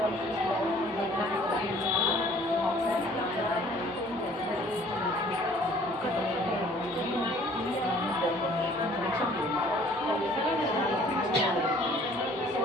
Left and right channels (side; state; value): both; normal; correlation 0.55